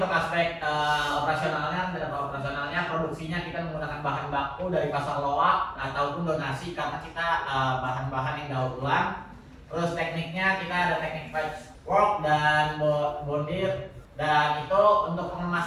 aspek operasionalnya produksinya kita menggunakan bahan baku dari pasar loak ataupun donasi karena kita bahan-bahan yang daur ulang. Terus tekniknya kita ada teknik patchwork dan bondir, dan itu untuk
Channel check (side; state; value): both; identical; correlation 1.00